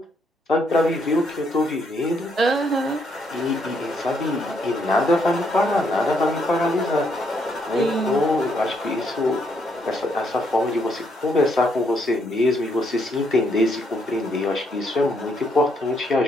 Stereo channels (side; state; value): both; normal; correlation 0.74